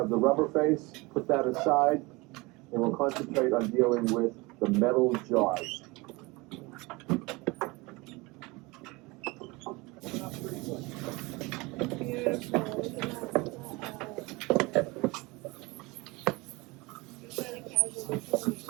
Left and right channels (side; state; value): left; quieter; 24.3 dB